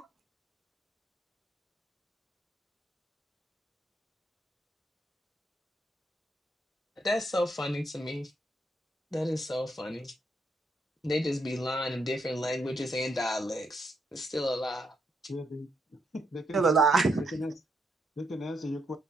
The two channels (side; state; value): both; normal; correlation 0.77